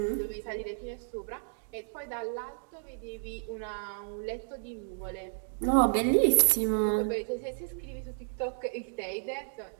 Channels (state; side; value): silent; left; digital silence